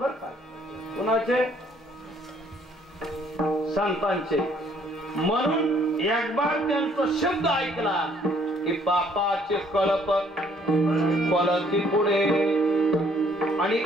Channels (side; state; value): both; normal; correlation 0.63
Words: का. कुणाचे? संतांचे. म्हणून एक बार त्यांचा शब्द ऐकला की पापाचे कळप पळती पुढे, आणि